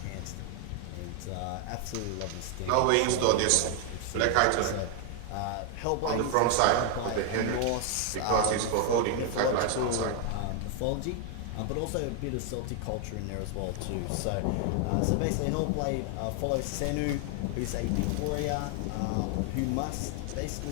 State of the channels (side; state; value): both; different; correlation 0.00